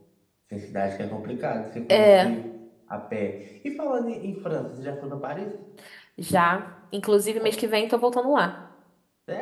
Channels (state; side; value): identical; both; correlation 1.00